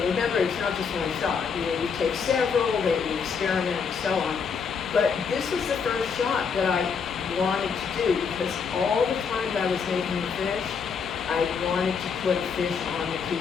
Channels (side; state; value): right; quieter; 6.0 dB